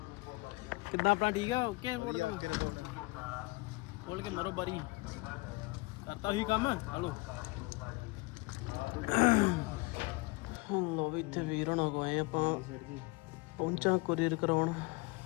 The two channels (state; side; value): quieter; right; 24.4 dB